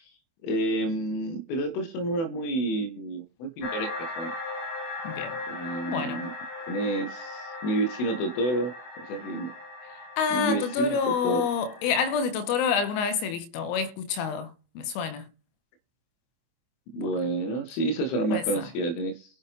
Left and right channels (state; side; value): late; right; 24 ms